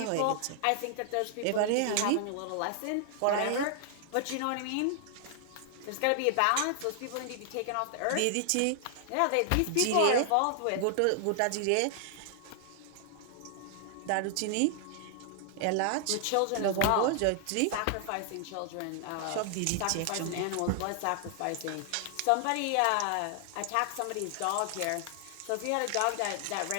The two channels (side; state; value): both; different; correlation 0.00